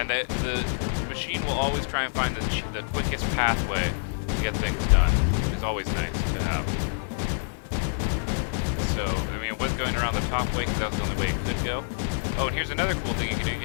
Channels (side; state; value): right; silent; digital silence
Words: the machine will always try and find the quickest pathway to get things done, which is always nice to have. So, I mean, it was going around the top way because that was the only way it could go. Oh, and here's another cool thing you can do. You